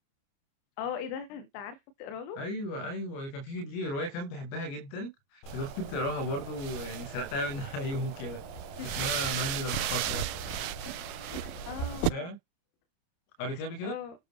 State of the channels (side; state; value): right; late; 29 ms